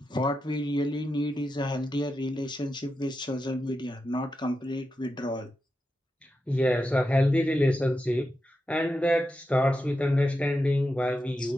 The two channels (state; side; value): normal; both; correlation 0.88